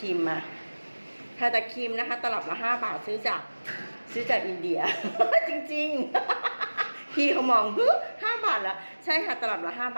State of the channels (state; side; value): inverted; both; correlation -1.00